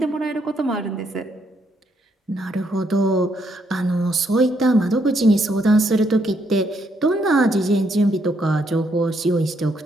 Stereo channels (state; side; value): normal; both; correlation 0.74